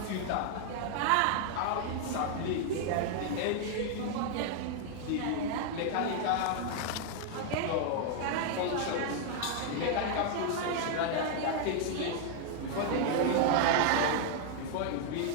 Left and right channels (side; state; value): both; different; correlation 0.00